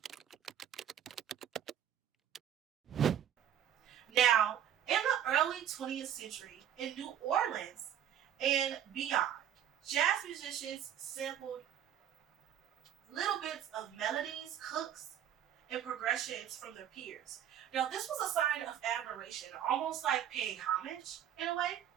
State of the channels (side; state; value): left; quieter; 10.1 dB